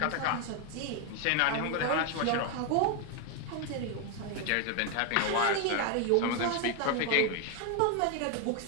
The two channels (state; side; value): different; both; correlation 0.01